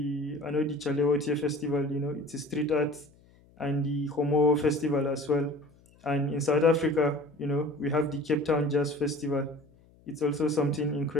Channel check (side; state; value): left; noise; hum, 29 dB below the sound